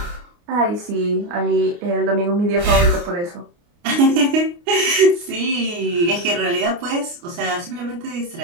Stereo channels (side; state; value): left; late; 29 ms